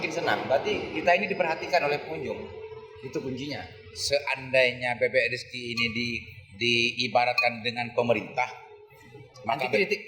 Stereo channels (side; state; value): both; identical; correlation 1.00